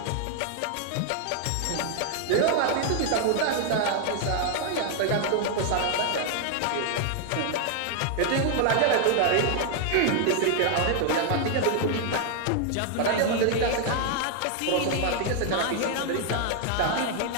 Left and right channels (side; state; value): both; different; correlation 0.00